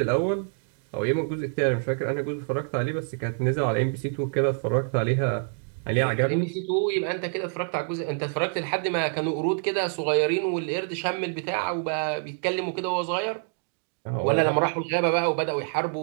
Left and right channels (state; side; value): silent; left; 60 dB below the other